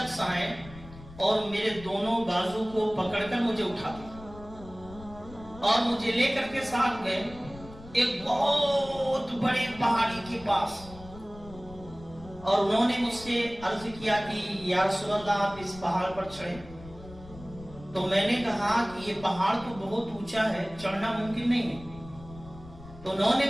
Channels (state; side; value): noise; left; rumble, 17 dB below the sound